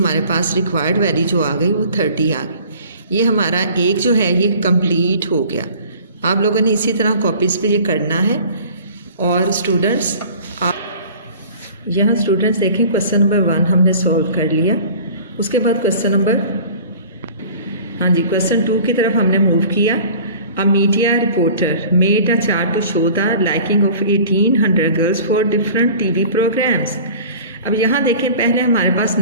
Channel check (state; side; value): inverted; both; correlation -0.45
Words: पास रिक्वायर्ड वैल्यू जो आ गई वो 30 आ गई। ये हमारा एक जो है ये कंप्लीट हो गया। आप लोगों ने इसी तरह कॉपीज़ पे ये करना है। और स्टूडेंट्स आप यहाँ स्टूडेंट्स देखें, क्वेश्चन नंबर 1 हमने सॉल्व कर लिया। उसके बाद क्वेश्चन नंबर, हाँ जी, क्वेश्चन 2 की तरफ हमने मूव किया। A media reporter made a chart to show the liking of 1800 girls for different TV programmes. अब यहाँ देखें, पहले हमारे पास